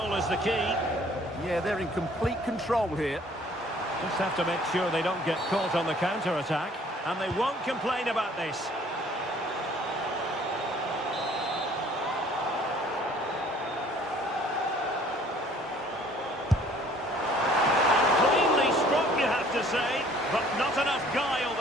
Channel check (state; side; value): normal; both; correlation 0.56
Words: is the key. Yeah, they're in complete control here. Just have to make sure they don't get caught on the counter-attack. And they won't complain about this. To say, but not enough guile